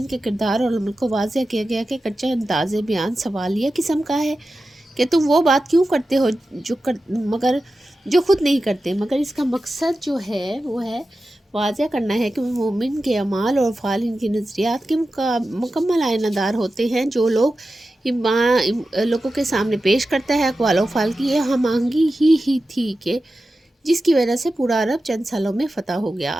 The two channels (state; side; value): normal; both; correlation 0.93